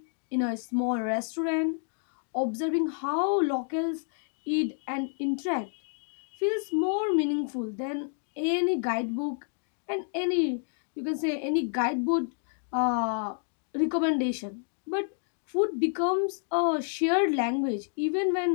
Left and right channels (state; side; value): silent; right; 58 dB below the other